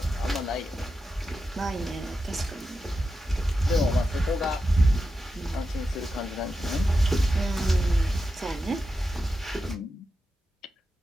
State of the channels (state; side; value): normal; both; correlation 0.90